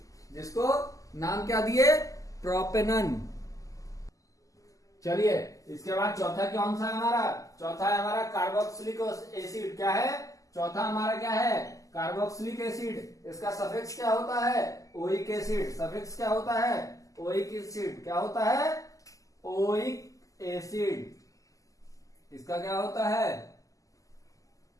जिसको नाम क्या दिए, प्रोपेनन। चलिए इसके बाद चौथा कौन सा है हमारा, चौथा है हमारा कार्बोक्सिलिक एसिड। क्या है चौथा हमारा, क्या है, कार्बोक्सिलिक एसिड। इसका सफिक्स क्या होता है, ओइक एसिड। सफिक्स क्या होता है, ओइक एसिड। क्या होता है, ओइक एसिड। इसका क्या होता है,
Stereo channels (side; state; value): right; late; 0.16 ms